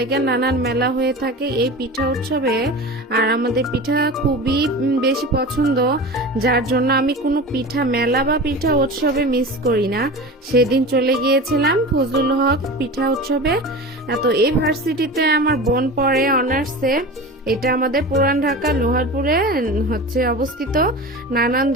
নানান মেলা হয়ে থাকে এই পিঠা উৎসবে। আর আমাদের পিঠা খুবই বেশি পছন্দ, যার জন্য আমি কোনো পিঠা মেলা বা পিঠা উৎসবে মিস করি না। সেদিন চলে গিয়েছিলাম ফজলুল হক পিঠা উৎসবে। তো এই ভার্সিটিতে আমার বোন পড়ে অনার্সে। এটা আমাদের পুরান ঢাকা লোহারপুরে হচ্ছে অবস্থিত। নানান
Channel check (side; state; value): both; normal; correlation 0.31